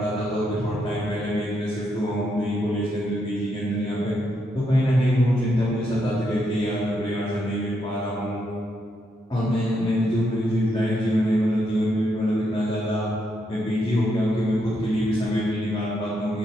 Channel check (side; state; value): both; normal; correlation 0.79